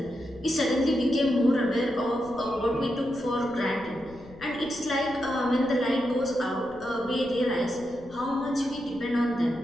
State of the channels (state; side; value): noise; left; rumble, 22 dB below the sound